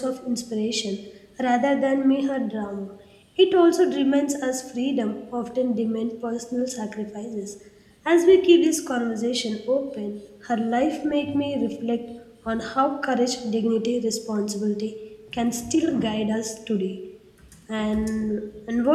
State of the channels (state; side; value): identical; both; correlation 1.00